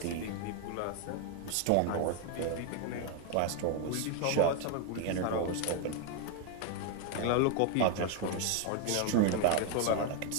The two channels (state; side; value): different; both; correlation 0.00